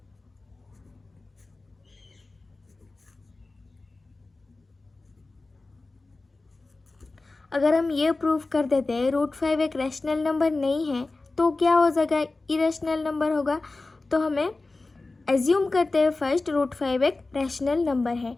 अगर हम ये प्रूव कर देते हैं √5 एक रैशनल नंबर नहीं है तो क्या हो जाएगा, इरेशनल नंबर होगा। तो हमें एज्यूम करते हैं फर्स्ट √5 एक रैशनल नंबर है।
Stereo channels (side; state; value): right; quieter; 3.4 dB